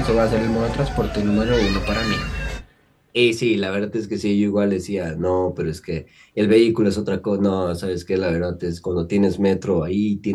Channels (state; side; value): identical; both; correlation 1.00